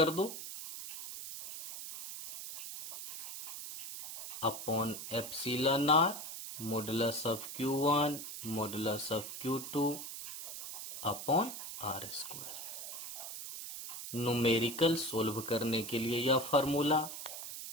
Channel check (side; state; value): right; noise; hiss, 8 dB below the sound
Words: दो upon epsilon R modulus of Q1 modulus of Q2 upon R square. Numerical solve करने के लिए यह formula,